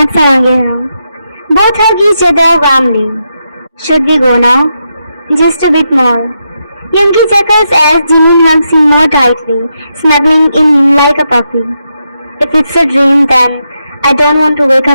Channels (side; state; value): both; inverted; correlation -0.84